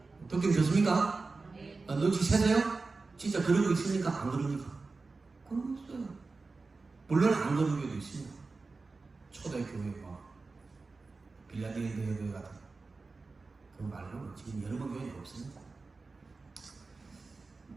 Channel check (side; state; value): left; quieter; 3.9 dB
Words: 듣기 좋습니까? 눈치 채세요? 진짜 그러고 있습니까? 안 그러니까? 그러고 있어요. 물론 안 그런 교회도 있습니다. 초대교회 빌라델피아 교회 같은 그 말로는 지금 여러 번 교회가 없습니다.